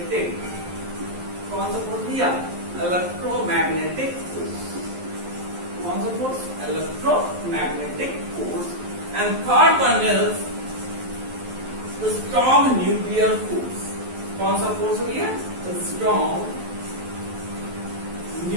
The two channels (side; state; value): left; late; 11 ms